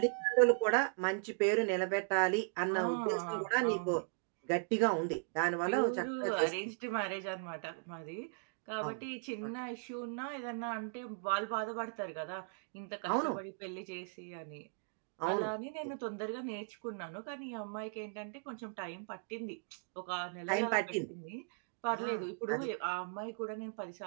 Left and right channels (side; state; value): left; silent; digital silence